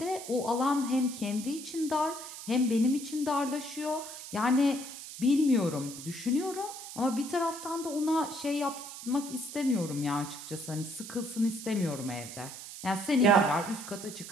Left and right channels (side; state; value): right; noise; hiss, 11 dB below the sound